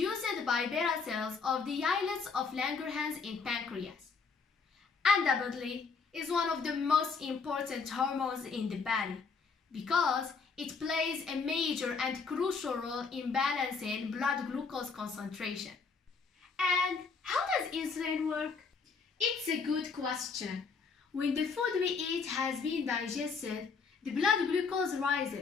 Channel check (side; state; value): right; quieter; 5.1 dB